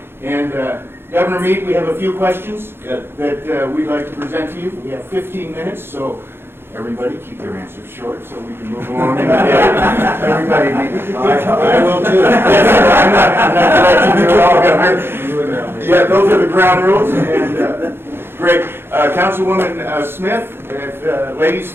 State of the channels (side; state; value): left; late; 0.11 ms